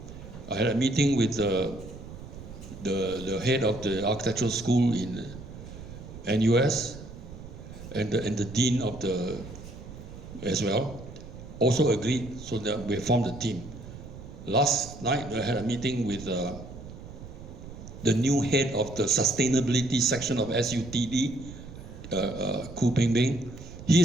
I had a meeting with the head of the architectural school in NUS and the dean of the as well, also agreed, so that we formed a team. Last night I had a meeting with the new head of the sustainability section of SUTD, Khoo Peng. He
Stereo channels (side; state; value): right; noise; rumble, 14 dB below the sound